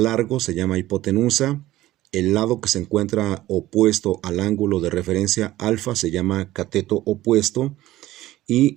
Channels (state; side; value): quieter; left; 15.8 dB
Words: se llama hipotenusa. El lado que se encuentra opuesto al ángulo de referencia alfa se llama cateto opuesto. Y